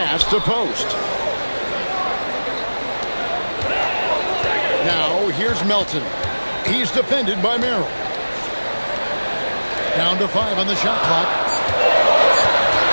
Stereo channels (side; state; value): both; inverted; correlation -1.00